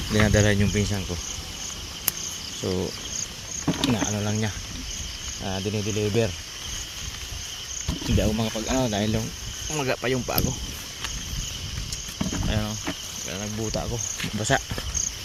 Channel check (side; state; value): both; identical; correlation 1.00